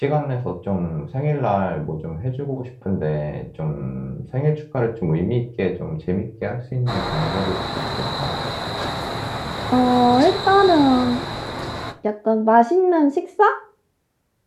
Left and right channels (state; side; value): identical; both; correlation 1.00